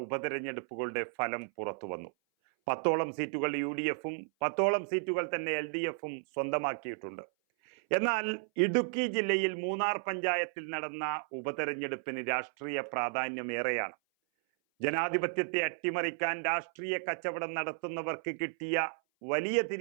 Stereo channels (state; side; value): silent; left; 56 dB below the other